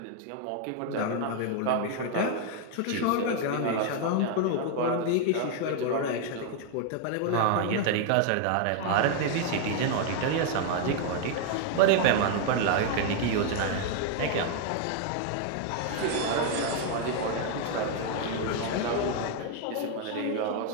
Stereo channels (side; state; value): both; different; correlation 0.00